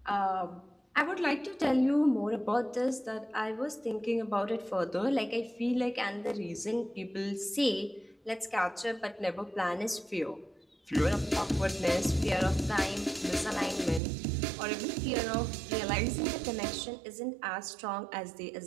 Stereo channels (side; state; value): left; drops out; at 14.0 s